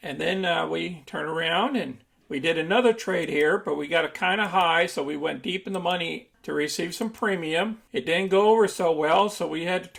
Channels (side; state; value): both; identical; correlation 1.00